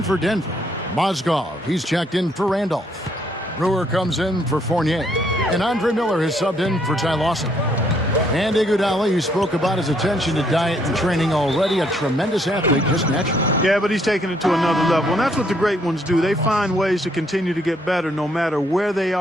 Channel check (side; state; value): both; normal; correlation 0.70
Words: for Denver, Mozgov, he's checked in for Randolph. Brewer comes in for Fournier. And Andre Miller has subbed in for Ty Lawson. And Iguodala, you spoke about his attention to diet and training already. A tremendous athlete, just naturally. Yeah, but he's taking it to another level. And that's what the great ones do. They find ways to continue to get better no matter where they